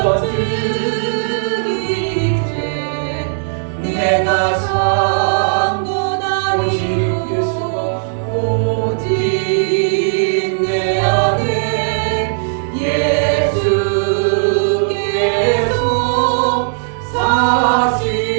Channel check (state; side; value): silent; left; digital silence